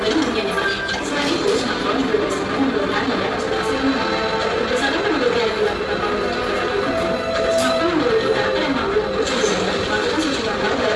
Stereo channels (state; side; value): identical; both; correlation 1.00